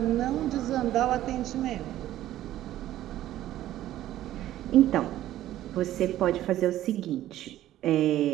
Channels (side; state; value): left; quieter; 13.6 dB